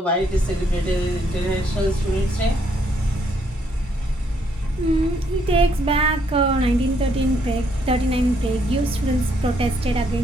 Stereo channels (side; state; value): both; normal; correlation 0.71